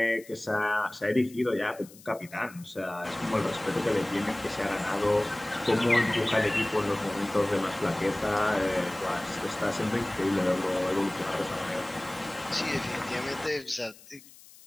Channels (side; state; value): left; noise; hiss, 22 dB below the sound